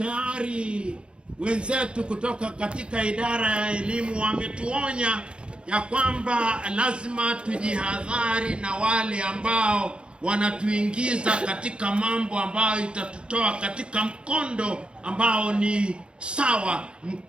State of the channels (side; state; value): left; late; 0.056 ms